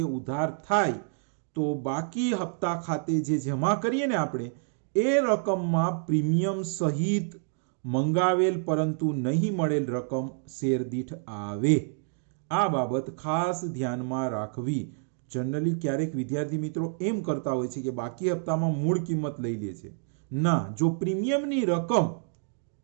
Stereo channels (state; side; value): silent; left; 59 dB below the other